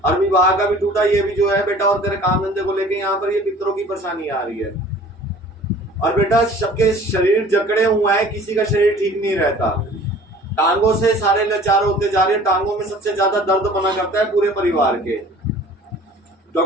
और विवाह का भी टूटा ये भी जो है बेटा। और तेरे काम धंधे को लेके यहाँ पर ये पितरों की परेशानी आ रही है। और बेटा सबके शरीर जकड़े हुए हैं, किसी का शरीर ठीक नहीं रहता। टांगों से सारे लाचार होते जा रहे हैं। टांगों में सबसे ज्यादा दर्द बना करता है पूरे परिवार के।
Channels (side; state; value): both; normal; correlation 0.48